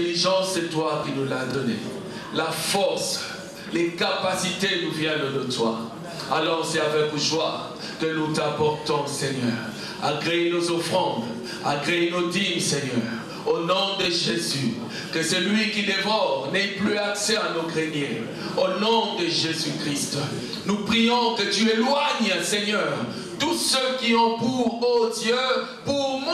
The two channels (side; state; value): both; identical; correlation 1.00